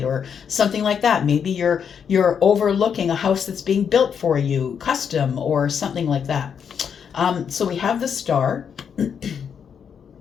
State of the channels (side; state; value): right; quieter; 7.3 dB